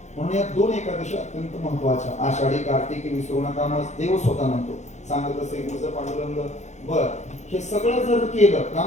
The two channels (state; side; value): late; right; 0.33 ms